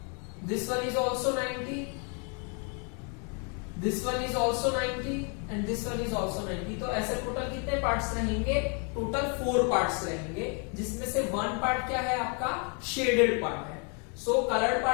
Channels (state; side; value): quieter; right; 37.6 dB